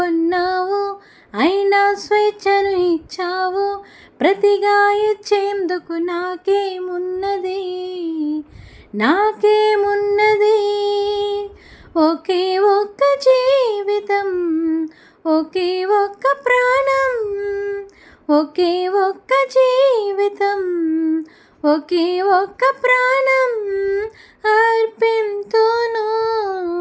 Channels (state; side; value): identical; both; correlation 1.00